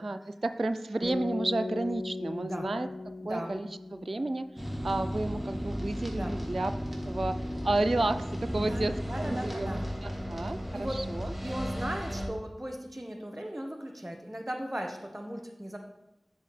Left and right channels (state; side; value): normal; both; correlation 0.97